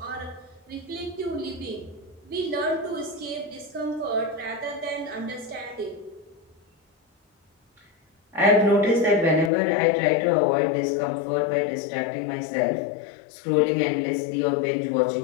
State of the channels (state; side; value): drops out; right; at 9.5 s